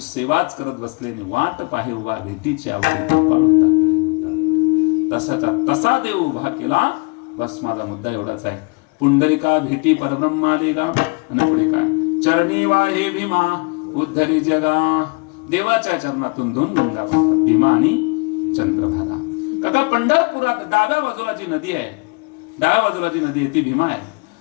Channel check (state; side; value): quieter; right; 30.0 dB